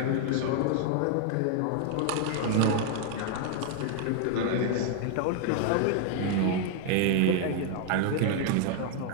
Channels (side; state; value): both; different; correlation 0.00